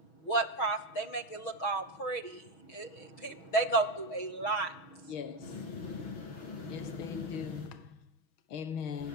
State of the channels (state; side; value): late; right; 6.2 ms